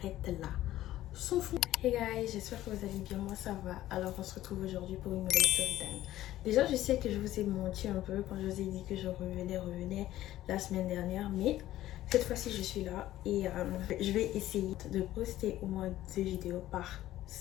là. Son front. Hey guys, j'espère que vous allez bien, moi ça va. Alors on se retrouve aujourd'hui pour une nouvelle story time. Déjà je sais que je vous ai menti un peu quand je vous ai dit que je revenais la semaine dernière, mais cette fois-ci je suis là et je vais essayer de poster au moins 2 vidéos par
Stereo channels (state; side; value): quieter; right; 14.3 dB